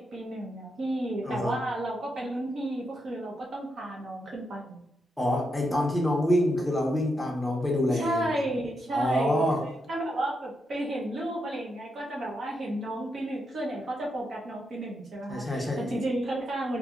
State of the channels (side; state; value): both; normal; correlation 0.83